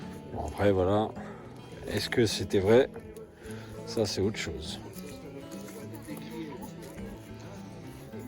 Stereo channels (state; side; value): identical; both; correlation 1.00